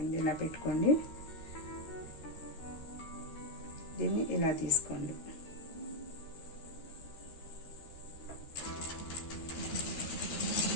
ఇలా పెట్టుకోండి, దీన్ని ఇలా తీసుకోండి.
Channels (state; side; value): late; right; 13 ms